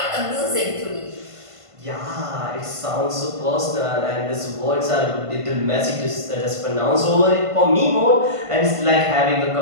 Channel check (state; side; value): late; left; 1.5 ms